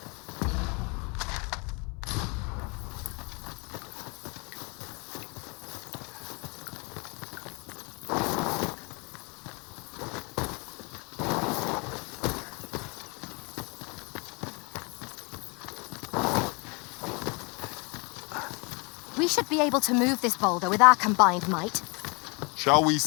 We should be able to move this boulder with our combined might. Shall we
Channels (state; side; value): quieter; right; 30.7 dB